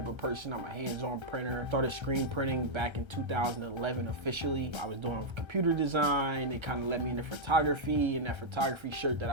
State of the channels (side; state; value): left; late; 1.3 ms